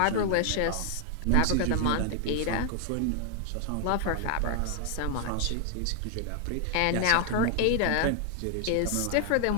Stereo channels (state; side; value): different; both; correlation 0.00